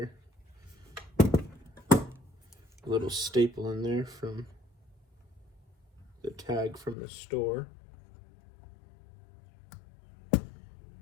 A little staple in there from the tag from the store.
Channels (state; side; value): drops out; right; at 7.0 s